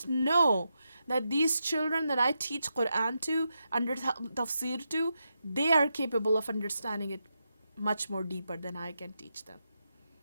know that these children that I teach Quran to, under Tafsir to, they are capable of understanding it much more deeper than I can teach them.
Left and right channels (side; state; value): both; inverted; correlation -0.86